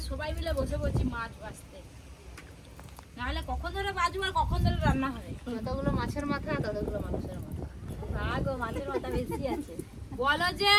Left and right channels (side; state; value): both; identical; correlation 1.00